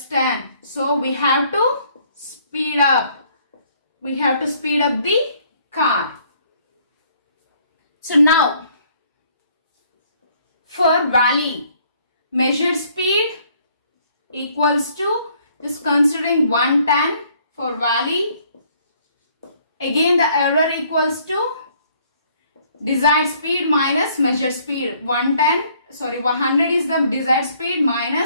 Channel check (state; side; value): inverted; both; correlation -0.63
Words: 10. So we have to speed up. We have to speed up the car. So now for valley, measured speed equals to, just considering 110 for valley. Again the error equals to desired speed minus measured speed. 100 is the desired speed